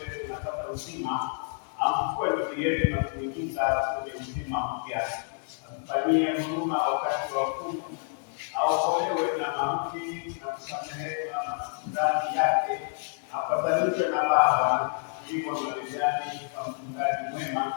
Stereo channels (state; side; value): silent; right; 59 dB below the other